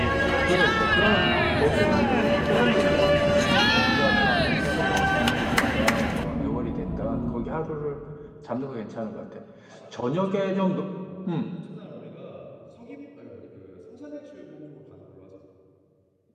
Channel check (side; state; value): both; identical; correlation 1.00